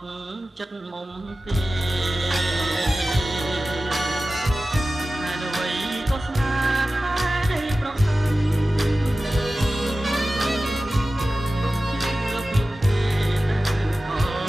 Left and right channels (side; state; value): both; normal; correlation 0.95